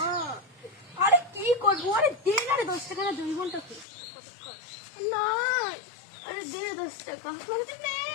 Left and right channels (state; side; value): drops out; right; at 3.9 s